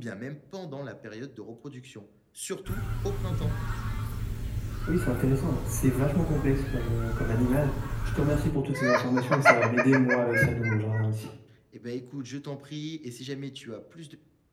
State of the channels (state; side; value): identical; both; correlation 1.00